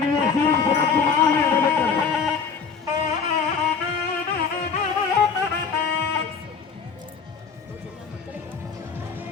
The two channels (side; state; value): right; quieter; 5.7 dB